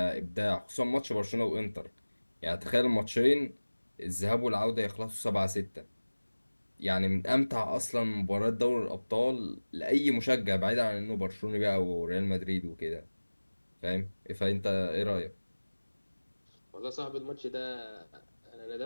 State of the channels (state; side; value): inverted; both; correlation -1.00